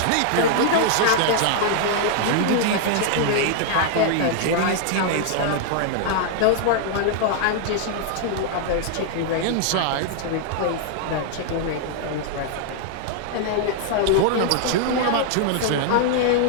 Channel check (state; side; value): different; both; correlation 0.00